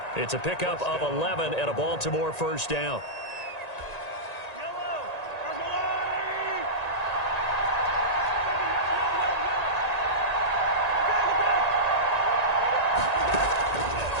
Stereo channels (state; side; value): late; right; 1.9 ms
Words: It's a pickup of 11 and a Baltimore 1st down.